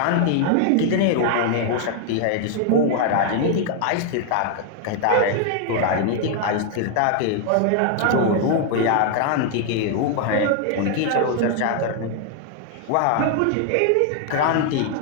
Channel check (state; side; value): different; both; correlation 0.00